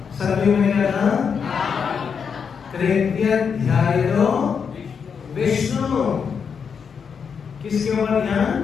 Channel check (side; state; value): right; quieter; 6.5 dB